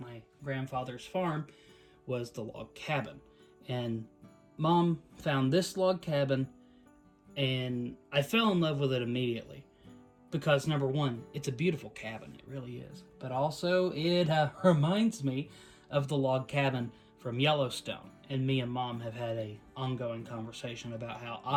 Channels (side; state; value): both; identical; correlation 1.00